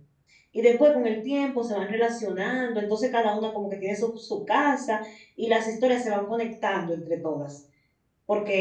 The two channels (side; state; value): both; identical; correlation 1.00